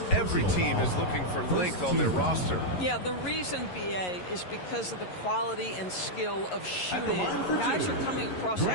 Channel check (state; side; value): late; right; 11 ms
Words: every team is looking for length on their roster. Yeah, the reason, BA, is because of the quality and skill of shooting. Guys are coming across